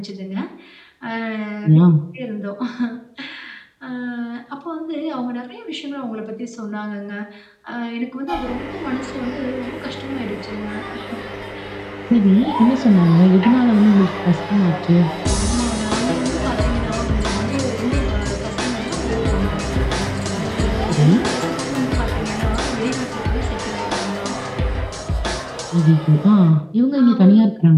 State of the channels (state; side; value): identical; both; correlation 1.00